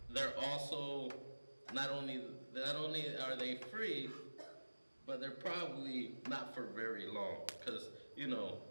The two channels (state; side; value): inverted; both; correlation -1.00